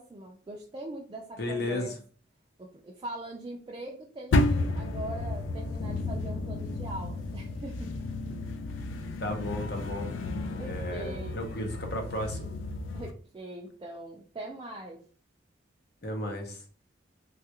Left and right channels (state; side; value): normal; both; correlation 0.59